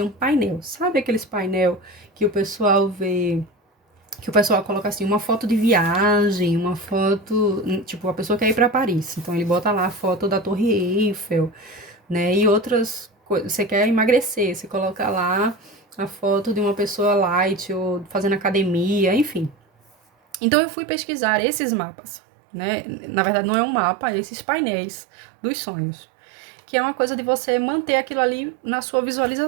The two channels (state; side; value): drops out; left; at 20.4 s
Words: um painel. Sabe aqueles painel que o pessoal vê, que o pessoal coloca assim, uma foto de viagem, uma foto, tipo, a pessoa quer ir para Paris. Então ele bota lá a foto da Torre Eiffel, né? E outras coisas. Você quer emagrecer, você coloca lá a foto de uma pessoa light ou fazendo academia, enfim. Então eu fui pesquisar esses mapas, né? Na verdade não é um mapa, é esses painéis dos sonhos, que é uma coisa de você manter aquilo ali na sua